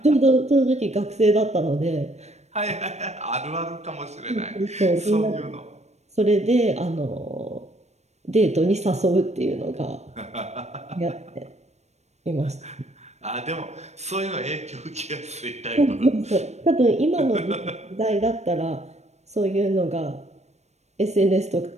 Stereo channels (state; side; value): late; left; 0.32 ms